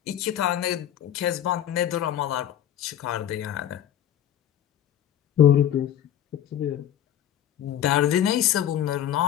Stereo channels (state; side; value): quieter; right; 10.6 dB